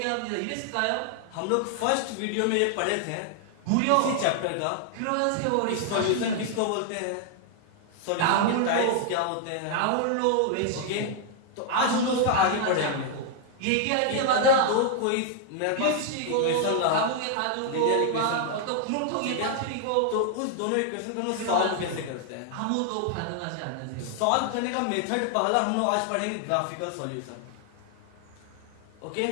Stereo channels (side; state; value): both; different; correlation 0.00